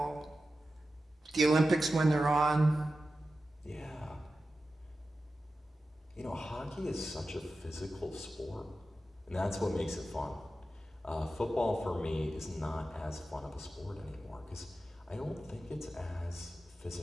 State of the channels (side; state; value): both; normal; correlation 0.92